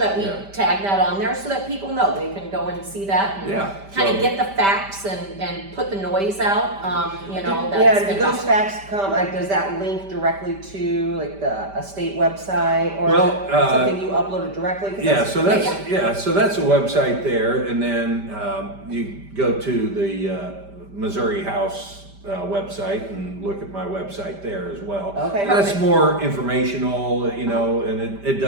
we Yeah. tag that on there so that people know they can go and see that and kind of so- get the facts and put the noise out. You know, Yeah, that's do been those facts come, like, does that link directly to like a state website, or Well, is it something you uploaded directly? 'Cause Yeah, so that's a website there, and then you go to the Missouri House website and look at my website there as well. Okay, That's perfect. more informational, you know, and it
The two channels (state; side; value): late; left; 5.1 ms